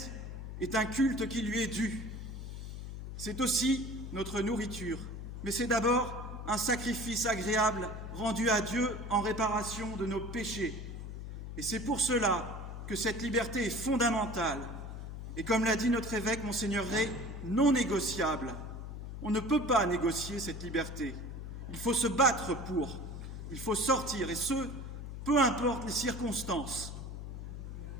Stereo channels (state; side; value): noise; left; hum, 8 dB below the sound